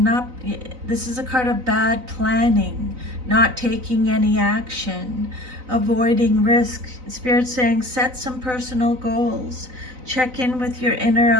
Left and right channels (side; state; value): left; late; 3.9 ms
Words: This is a card of bad planning, not taking any action, avoiding risk. Spirit's saying set some personal goals. Check in with your inner